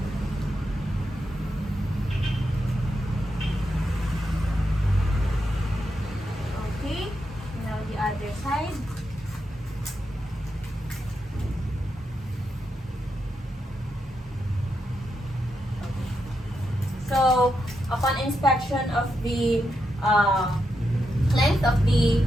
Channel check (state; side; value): normal; both; correlation 0.84